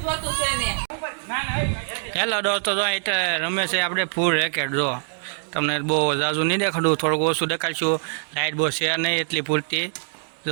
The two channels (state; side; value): silent; left; digital silence